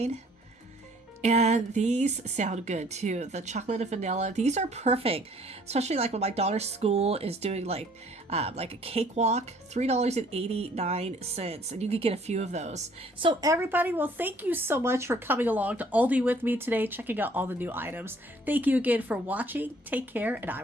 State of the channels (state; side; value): normal; both; correlation 0.58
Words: And these sound good too. The chocolate and vanilla, these are perfect, especially like when my daughter's school is doing like a cakewalk, $3.89, and you could get a few of those. So everybody, well, thank you so much for coming along to Aldi with me today, checking out all the new items. Thank you again for watching. Take care, and I